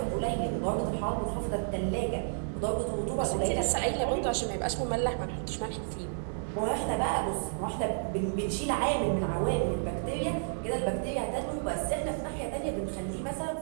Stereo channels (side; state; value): left; silent; digital silence